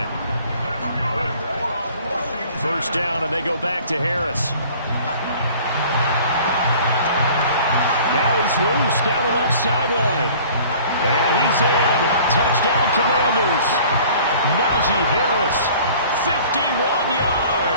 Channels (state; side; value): inverted; both; correlation -0.49